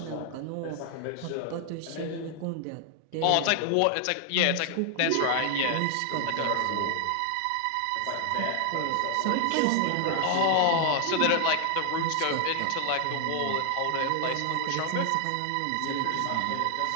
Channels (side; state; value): both; different; correlation 0.00